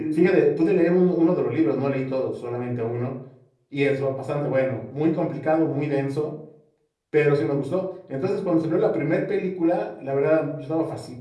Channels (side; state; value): both; identical; correlation 1.00